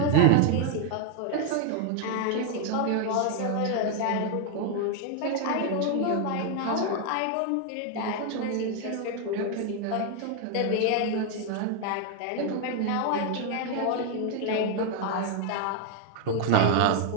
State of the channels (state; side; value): different; both; correlation 0.00